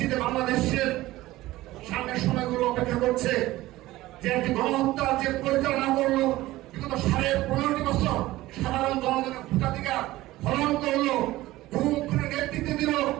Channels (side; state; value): left; quieter; 17.2 dB